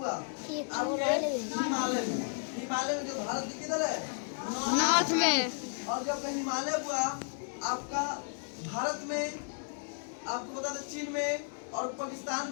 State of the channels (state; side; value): silent; right; 56 dB below the other